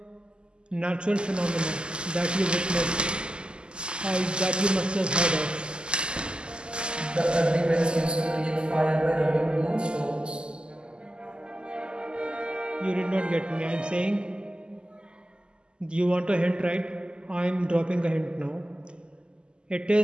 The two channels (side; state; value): left; late; 0.049 ms